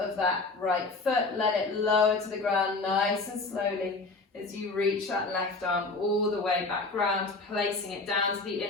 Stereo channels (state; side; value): quieter; right; 3.6 dB